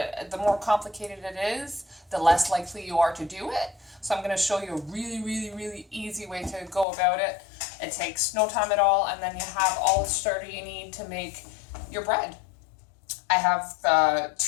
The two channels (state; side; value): drops out; right; at 6.9 s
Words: the more complicated it is, the less likely you are to do it. So I'm going to show you a really easy way to go about it. It takes no time at all, and then you have all the starter you need to make your bread. I have